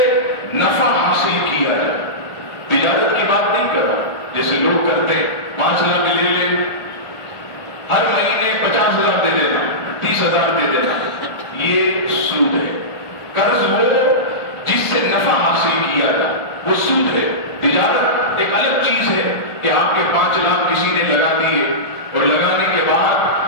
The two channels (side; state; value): right; late; 1.4 ms